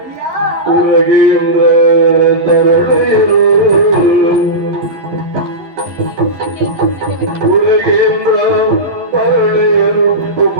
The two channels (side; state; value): left; late; 11 ms